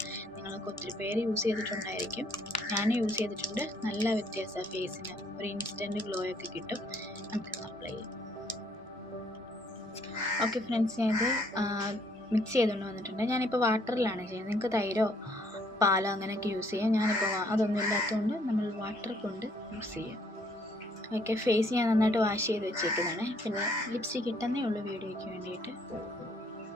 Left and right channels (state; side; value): normal; both; correlation 0.66